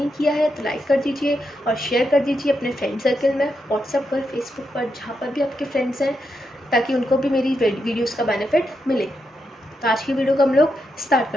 किया है तो लाइक कर दीजिए और शेयर कर दीजिए अपने फ्रेंड सर्कल में, व्हाट्सएप पर, फेसबुक पर, जहाँ पर भी आपके फ्रेंड्स हैं, ताकि उनको भी मेरी वीडियोज़ का बेनिफिट मिले। तो आज की वीडियो को हम लोग स्टार्ट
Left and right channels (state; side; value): normal; both; correlation 0.84